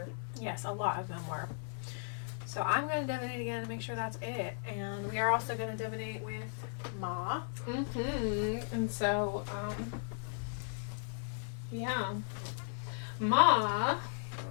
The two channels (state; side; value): silent; right; 54 dB below the other